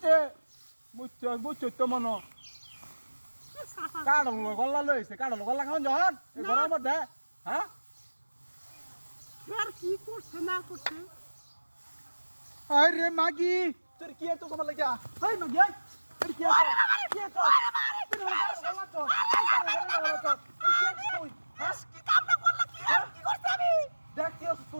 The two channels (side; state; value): both; inverted; correlation -1.00